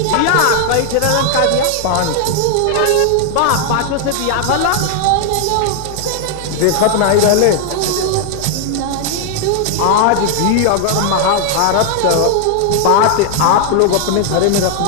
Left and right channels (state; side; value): different; both; correlation 0.00